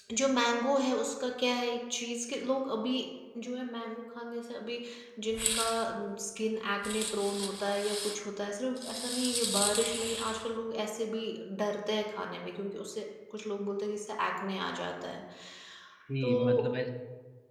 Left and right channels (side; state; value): both; identical; correlation 1.00